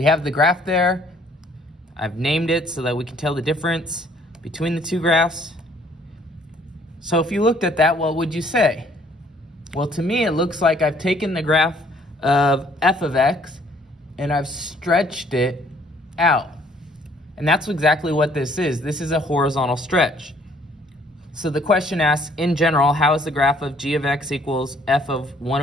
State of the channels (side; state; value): both; normal; correlation 0.61